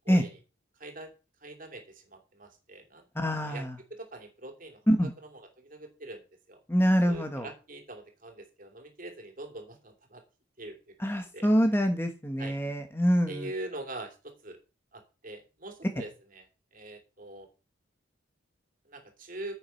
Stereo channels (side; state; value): both; normal; correlation 0.92